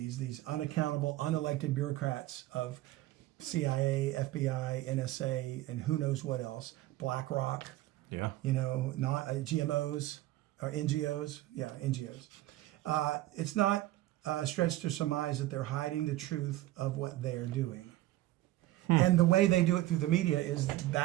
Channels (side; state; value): left; quieter; 16.1 dB